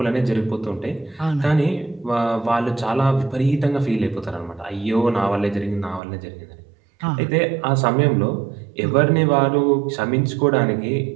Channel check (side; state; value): left; drops out; at 6.0 s